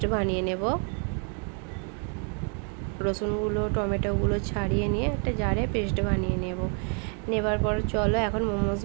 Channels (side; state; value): left; quieter; 39.9 dB